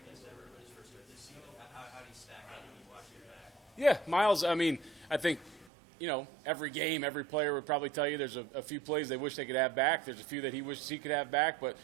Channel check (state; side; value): drops out; left; at 5.7 s